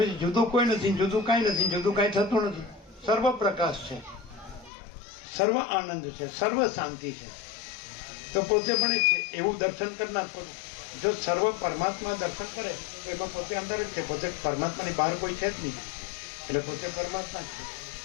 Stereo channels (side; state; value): right; drops out; at 4.7 s